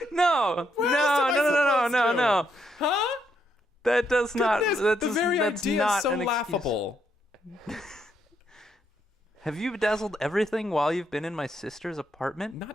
No. Where else am I supposed to? No. Huh? That does not. Goodness, That's the very that's idea not is so an excuse. laughable. Have you bedazzled everything while you've been in my sister's apartment?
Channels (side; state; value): both; normal; correlation 0.76